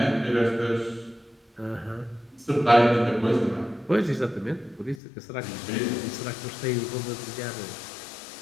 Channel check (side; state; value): right; drops out; at 5.0 s